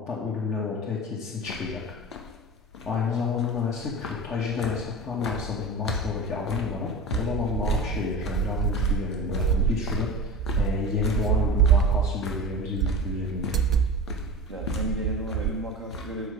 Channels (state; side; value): normal; both; correlation 0.31